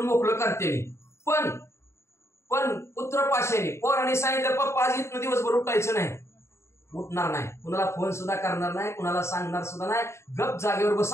मोकळं करते. पण पुत्र पाशाने पोरांनी सांगितलं पप्पा आज इथनं दिवसभर उठायचं नाही, उठणार नाही, कुणाला फोन सुद्धा करणार नाही, कुणाला सांगणार सुद्धा नाही, गप जागेवर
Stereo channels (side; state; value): right; late; 0.13 ms